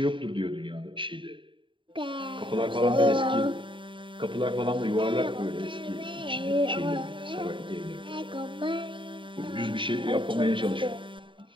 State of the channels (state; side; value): late; left; 0.24 ms